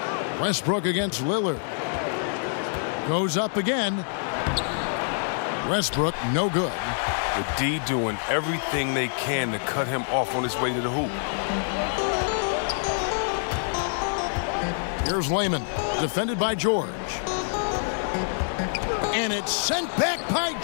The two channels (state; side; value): silent; right; 61 dB below the other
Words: Westbrook against Lillard. Goes up again. Westbrook, no good. The D doing everything they can to cut him off on his way to the hoop. Here's Layman, defended by George. And it's sent back by